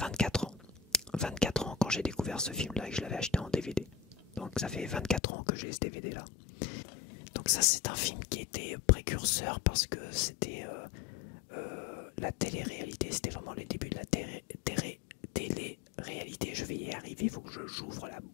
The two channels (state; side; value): drops out; right; at 5.2 s